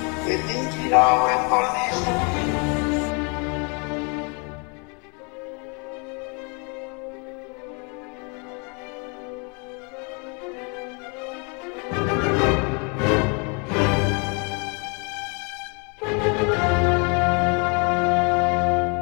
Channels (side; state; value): right; quieter; 33.9 dB